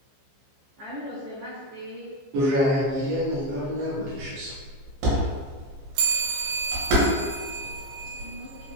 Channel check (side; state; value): left; late; 15 ms